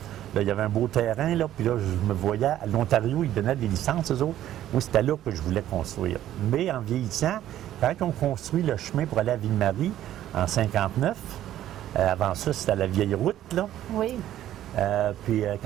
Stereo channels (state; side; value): quieter; left; 12.5 dB